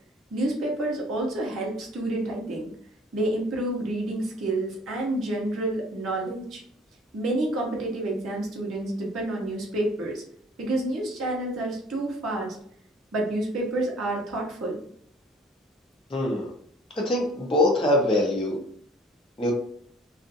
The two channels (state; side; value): normal; both; correlation 0.52